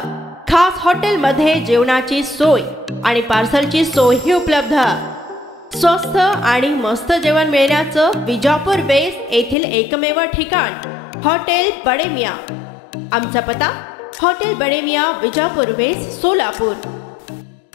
खास हॉटेल मध्ये जेवणाची सोय आणि पार्सलची सोयही उपलब्ध। स्वस्त आणि मस्त जेवण मिळण्याचं विजापूर वेस्ट येथील एकमेव ठिकाण हॉटेल बडे मियाँ। आमचा पत्ता हॉटेल बडे मियाँ, विजापूर वेस्ट, सोलापूर।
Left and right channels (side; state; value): right; drops out; at 9.6 s